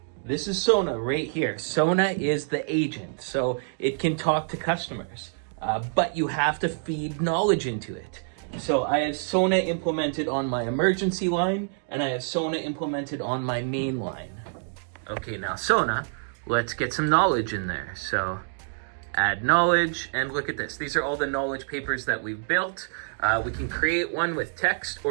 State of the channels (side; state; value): left; silent; digital silence